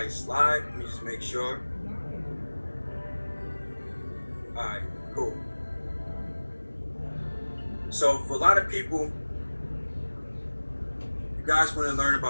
slide. Let me just make sure. All right, cool. So for a lot of people, you guys want to learn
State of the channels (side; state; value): both; inverted; correlation -1.00